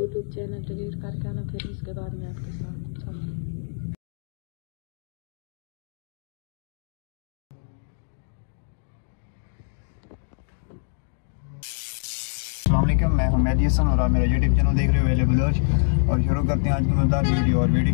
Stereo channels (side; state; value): right; silent; digital silence